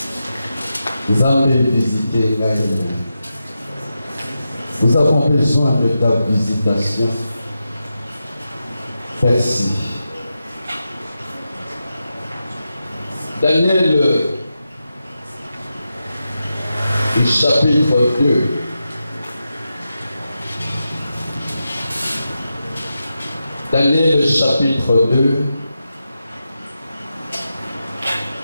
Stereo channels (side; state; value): both; inverted; correlation -0.89